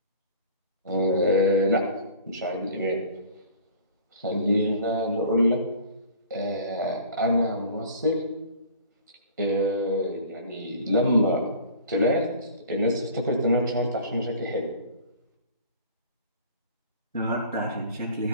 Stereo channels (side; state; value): both; inverted; correlation -0.46